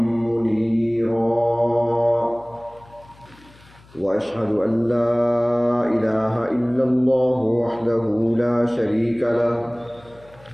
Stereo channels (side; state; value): left; noise; hum, 26 dB below the sound